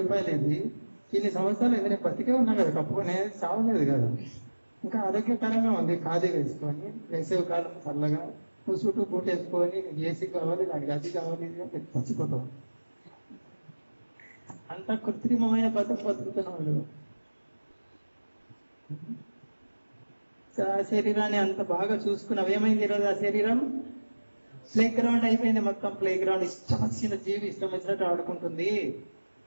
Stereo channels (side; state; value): both; inverted; correlation -1.00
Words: ఇది. ఇన్ని సంవత్సరాలు ఇది నేను బతికే ఉన్నా కదా, కప్పుకొని చావలేదు కదా. ఇంకా ఆరోగ్యకరంగా ఉంది. ఖాదీ వేసుకొని వేసవి కాలం చల్లగా నువ్వు చుట్టూ బూట్ వేసుకొని ఏసీ కావాలి, దానికి అది కావాలి, చచ్చిపోతావు. అంత కృత్రిమమైన బతుకుతున్నాడు. ఆ శరీరాన్ని అంత బాగా చూసుకున్నావు, ఏమైంది ఈరోజు ఆ శరీరం? ప్లే గ్రౌండ్ అయిపోయింది మొత్తం. ప్లే గ్రౌండ్ ఇష్టం వచ్చిన జీవి ఇష్టం వచ్చినట్టు ఆడుకుంటుంది.